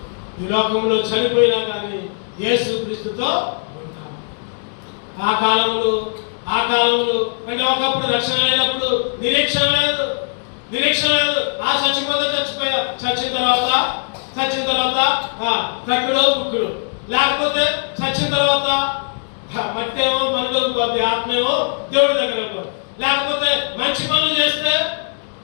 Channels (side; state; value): right; silent; digital silence